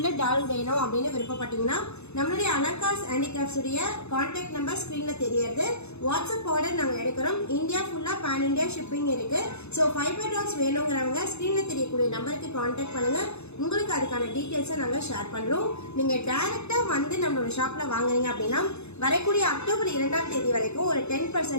டால் வேணும் அப்படின்னு விருப்பப்பட்டீங்கன்னா நம்மளுடைய அலங்கார் ஹேண்டிகிராஃப்ட்ஸ் உடைய கான்டாக்ட் நம்பர் ஸ்கிரீன்ல தெரியறது. வாட்ஸ்அப் ஆர்டர் நாங்கள் எடுக்கிறோம். இந்தியா ஃபுல்லா பேன் இந்தியா ஷிப்பிங் இருக்கு. ஸோ ஃபைபர் டால்ஸ் வேணுங்கிறவங்க ஸ்கிரீன்ல தெரியக்கூடிய நம்பருக்கு கான்டாக்ட் பண்ணுங்க. உங்களுக்கு அதுக்கான டீட்டெயில்ஸை நாங்கள் ஷேர் பண்றோம். நீங்க டைரக்டா வந்து நம்மளோட ஷாப்ல வாங்குறீங்க அப்படின்னா வரக்கூடிய அக்டோபர் 2ஆம் தேதி வரைக்கும் ஒரு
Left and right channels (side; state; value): right; late; 0.81 ms